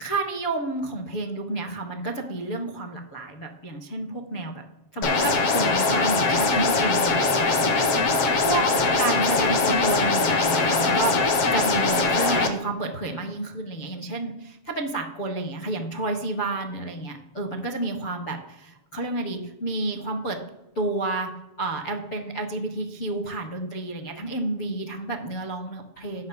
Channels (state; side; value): late; right; 7.2 ms